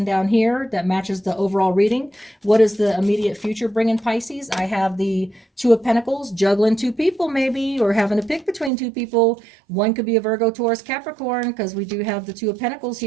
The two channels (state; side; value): drops out; left; at 8.7 s